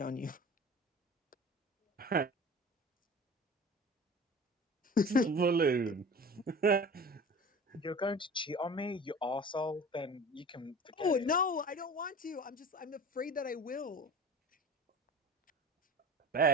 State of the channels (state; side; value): normal; both; correlation 0.38